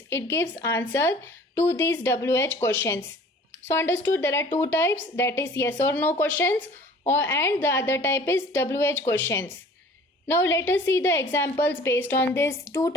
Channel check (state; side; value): normal; both; correlation 0.48